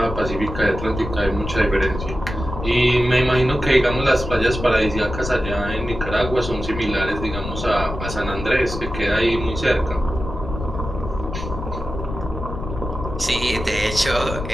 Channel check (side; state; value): left; noise; rumble, 7 dB below the sound